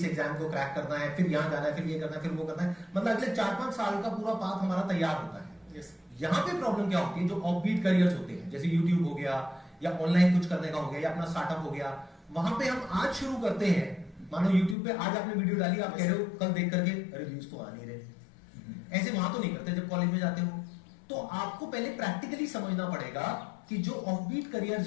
एग्जाम को क्रैक करना है, फिर यहाँ जाना है, फिर ये करना है, फिर वो करना है, मतलब अगले 4-5 साल का पूरा पाथ हमारा तैयार होता है। यहाँ पे प्रॉब्लम क्या होती है, जो ऑफबीट करियर्स होते हैं जैसे यूट्यूब हो गया या ऑनलाइन कुछ करने का हो गया या अपना स्टार्टअप हो गया, वहां पे हम आज शुरू करते हैं। मानो यूट्यूब पे आज आपने वीडियो डाली, आप कह रहे हो कल देख करके अरे व्यूज तो आ नहीं रहे, ऐसे वहां तो नहीं करते। जब कॉलेज में जाते हो तो आपको पहले प्रैक्टिकली समझना पड़ेगा कि जो ऑफबीट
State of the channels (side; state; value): right; drops out; at 14.8 s